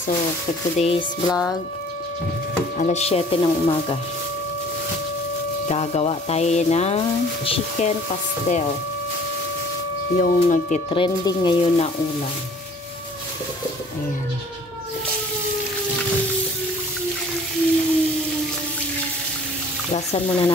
for today's vlog, alas 7 ng umaga, gagawa tayo ng chicken pastel, yung nagtitrending ngayon na ulam. Ayan. Lasan muna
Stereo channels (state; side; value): normal; both; correlation 0.51